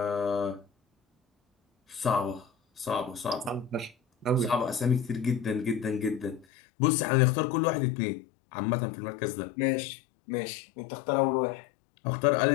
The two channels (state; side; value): drops out; right; at 6.5 s